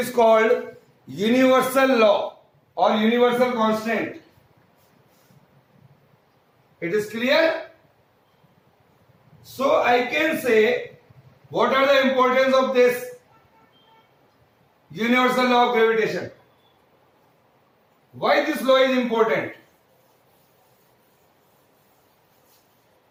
called universal law or universal constant. It is clear? So I can say what are the importance of this universal law of gravitation? Why this law is important?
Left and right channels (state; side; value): identical; both; correlation 1.00